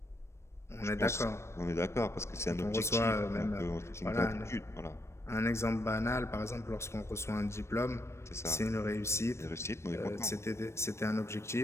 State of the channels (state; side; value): late; right; 0.13 ms